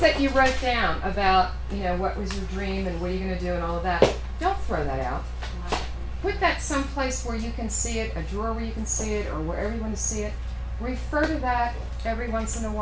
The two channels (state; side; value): identical; both; correlation 1.00